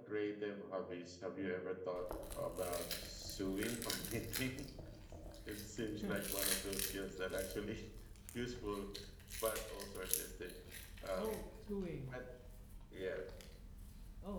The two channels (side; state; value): both; identical; correlation 1.00